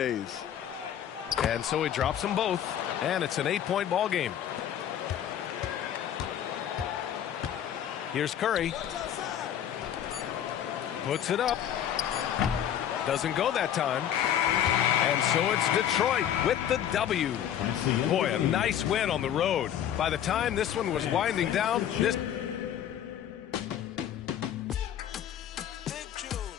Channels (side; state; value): right; quieter; 10.2 dB